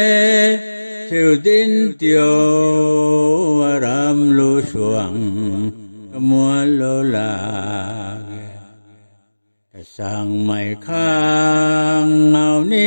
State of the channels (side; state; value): both; inverted; correlation -1.00